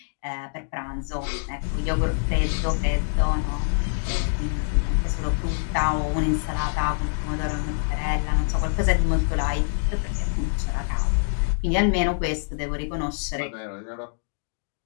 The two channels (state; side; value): silent; right; digital silence